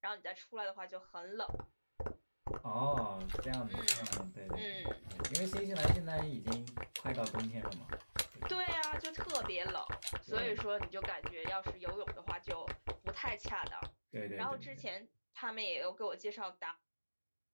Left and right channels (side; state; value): both; inverted; correlation -1.00